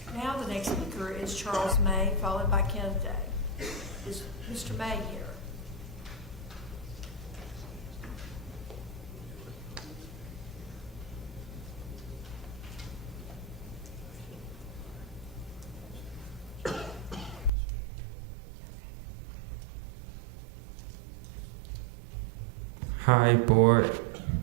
Now the next speaker is Charles May, followed by Kenneth Day. Is Mr. May here? Hi, board.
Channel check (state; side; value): drops out; left; at 17.5 s